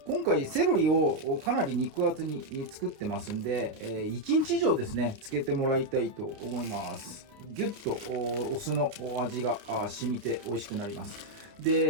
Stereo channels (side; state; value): left; late; 29 ms